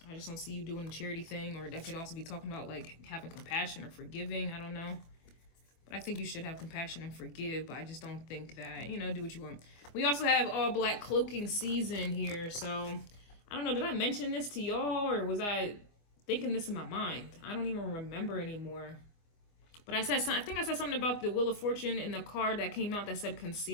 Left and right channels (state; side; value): late; right; 24 ms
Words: just don't see you doing the charity thing, or that could also be talking about like having compassion or forgiving. I don't know. But I think you should have compassion and forgive, but I just don't think that, you know, do what you want. We also have all black cloaking season here. So I don't know, did I mention this to y'all, or was I thinking this in my mind? I don't even remember anymore. But I think I said something about the Wheel of Fortune in the card that came out that said